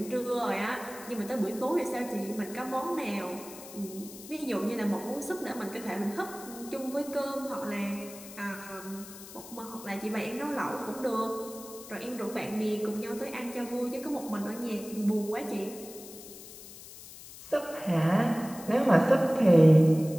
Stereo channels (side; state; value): left; noise; hiss, 16 dB below the sound